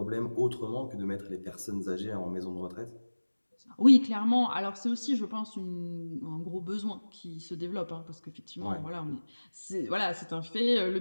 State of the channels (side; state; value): both; inverted; correlation -1.00